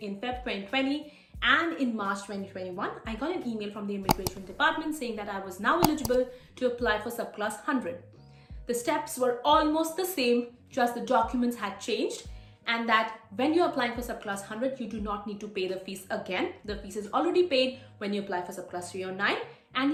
Feb 2020. And in March 2021, I got an email from the immigration department saying that I was now eligible to apply for subclass 100. The steps were almost the same, just the documents had changed, and that when you're applying for subclass 100, you do not need to pay the fees again. The fees is already paid when you apply for subclass 309,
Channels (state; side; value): identical; both; correlation 1.00